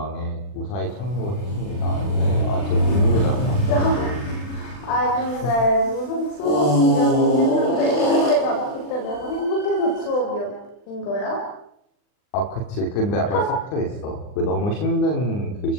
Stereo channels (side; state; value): right; late; 40 ms